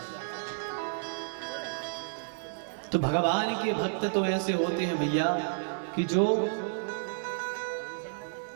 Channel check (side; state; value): left; silent; digital silence